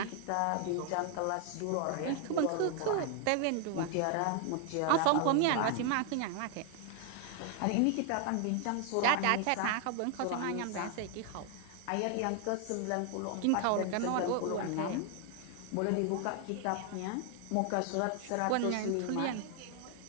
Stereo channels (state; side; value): different; both; correlation 0.00